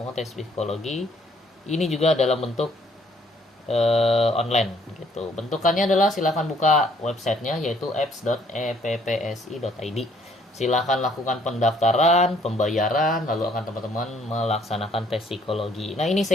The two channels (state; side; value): normal; both; correlation 0.63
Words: tes psikologi. Ini juga dalam bentuk online gitu. Bentukannya adalah silakan buka websitenya, yaitu apps.eppsi.id. Silakan lakukan pendaftaran, pembayaran, lalu akan teman-teman melaksanakan tes psikologi. Nah, ini